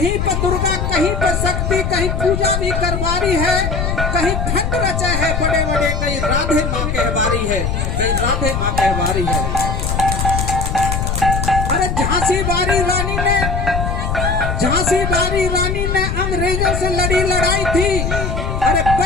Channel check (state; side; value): noise; left; rumble, 1 dB below the sound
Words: पर दुर्गा कहीं पर शक्ति, कहीं पूजा भी करवारी है, कहीं फंड रचे है बड़े बड़े, कहीं राधे माँ कहवारी है, कहीं राधे माँ कहवारी है। अरे झांसी बारी रानी ने अंग्रेजों से लड़ी लड़ाई थी। अरे